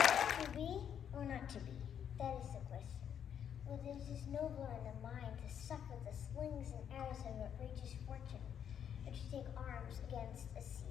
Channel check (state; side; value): quieter; right; 8.7 dB